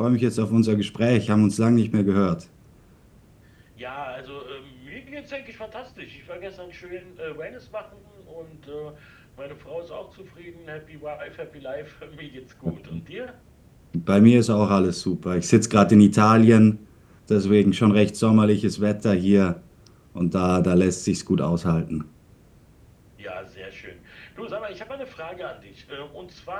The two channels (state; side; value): identical; both; correlation 1.00